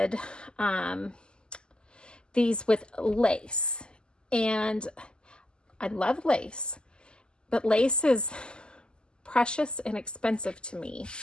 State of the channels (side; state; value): right; late; 0.047 ms